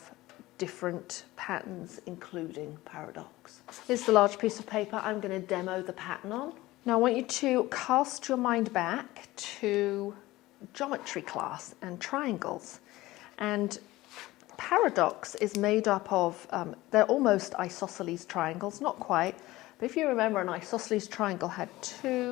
different patterns including Paradox. Here's the large piece of paper I'm going to demo the pattern on. Now I want you to cast your mind back to geometry class and triangles, and Paradox is made up of, they're almost isosceles triangles, not quite, but if you remember, an isosceles triangle had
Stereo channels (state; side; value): quieter; right; 18.2 dB